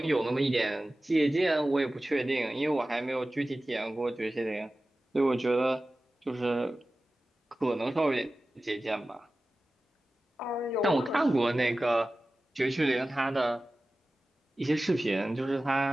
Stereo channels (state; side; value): normal; both; correlation 0.96